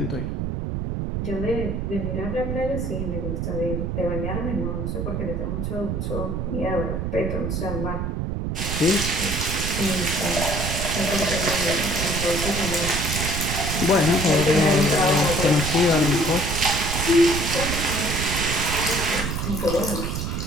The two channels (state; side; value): noise; right; rumble, 2 dB below the sound